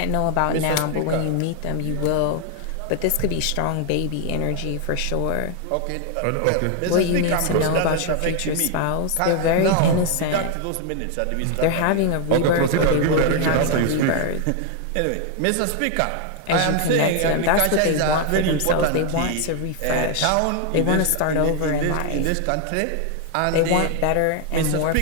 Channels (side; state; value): both; different; correlation 0.00